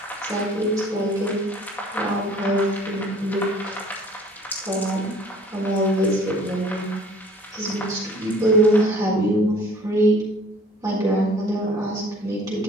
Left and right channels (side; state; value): both; normal; correlation 0.51